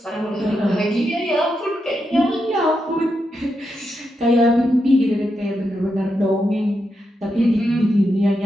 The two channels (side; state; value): both; normal; correlation 0.85